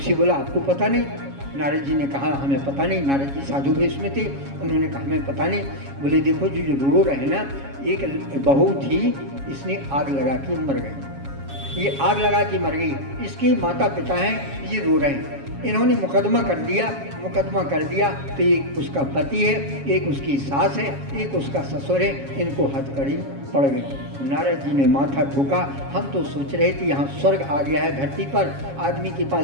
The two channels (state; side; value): late; left; 7.3 ms